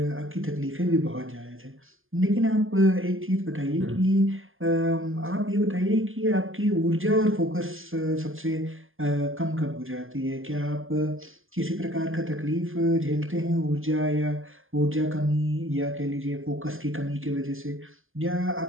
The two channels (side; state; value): left; late; 0.59 ms